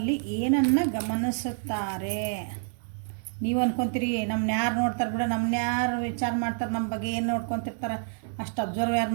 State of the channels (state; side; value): silent; left; digital silence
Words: ಏನನ್ನು ಗಮನಿಸುತ್ತಾರೆ. ನೀವು ಅನ್ಕೊತೀರಿ ನಮ್ಮನ್ನ ಯಾರು ನೋಡ್ತಾರೆ ಬಿಡ, ನಮ್ಮನ್ನ ಯಾರು ವಿಚಾರ ಮಾಡ್ತಾರೆ, ನಮ್ಮ ಬಗ್ಗೆ ಏನು ನೋಡ್ಕೊತಿರ್ತಾರೆ, ಅಷ್ಟು ಅಬ್ಸರ್ವ್ ಯಾರು